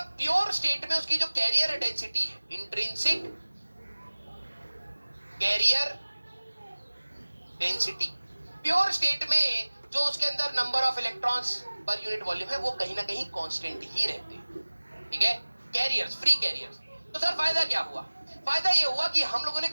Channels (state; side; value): inverted; both; correlation -1.00